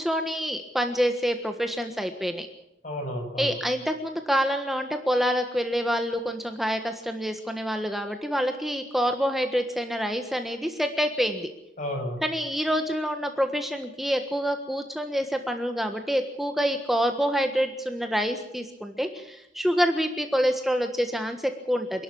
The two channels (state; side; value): normal; both; correlation 0.84